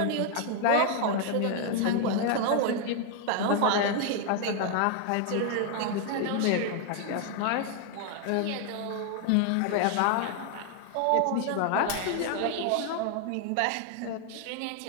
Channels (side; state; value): both; different; correlation 0.00